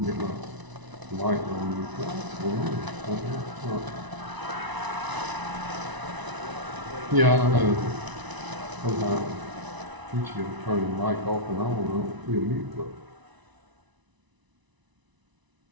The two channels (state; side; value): late; left; 1.0 ms